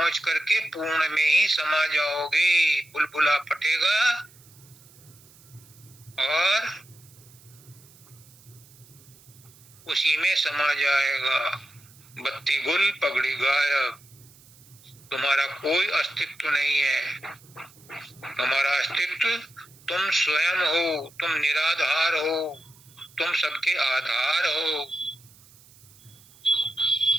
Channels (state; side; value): noise; right; hiss, 25 dB below the sound